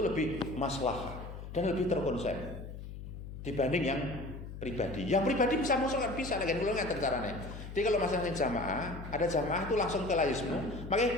maslahat dan lebih terkonsep dibanding yang pribadi. Yang pribadi bisa masuk kan bisa, lagi kalau nggak caranya. Jadi kalau masing-masing jamaah, ada jamaah itu langsung ke layismu. Makanya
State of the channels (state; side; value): noise; left; hum, 10 dB below the sound